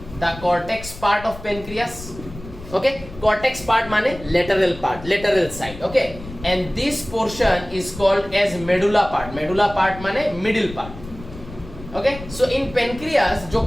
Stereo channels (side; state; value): left; noise; rumble, 15 dB below the sound